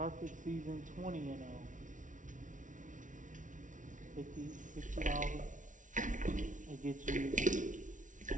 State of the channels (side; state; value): left; late; 0.37 ms